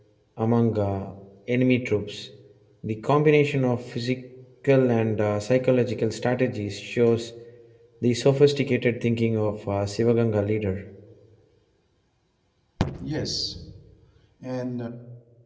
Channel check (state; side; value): identical; both; correlation 1.00